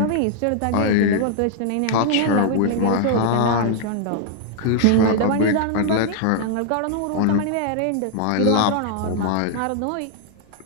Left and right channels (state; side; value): different; both; correlation 0.00